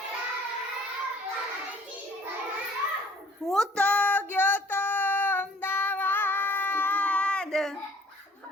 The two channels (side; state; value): both; normal; correlation 0.56